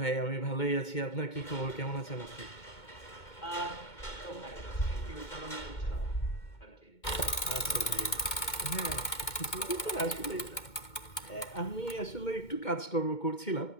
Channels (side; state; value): right; late; 2.2 ms